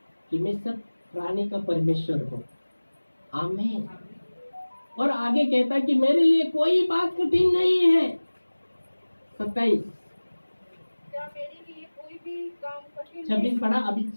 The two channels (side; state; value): both; inverted; correlation -1.00